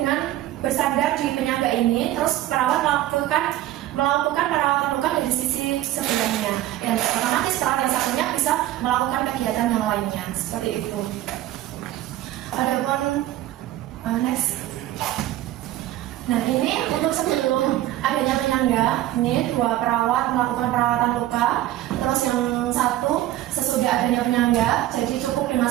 bersandar di penyangga ini, terus perawat melakukan perawatan luka dari sisi sebelahnya, dan otomatis perawat yang satunya bisa melakukan kegiatan yang lainnya, seperti itu. Adapun next. Nah, ini untuk sebelum adanya penyangga, ini 2 perawat melakukan perawatan luka, terus yang satu sesudah adanya penyangga, jadi cukup dengan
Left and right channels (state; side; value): quieter; left; 14.3 dB